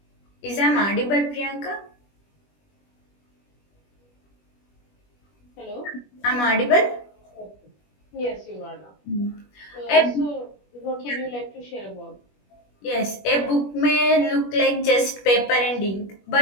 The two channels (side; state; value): right; late; 21 ms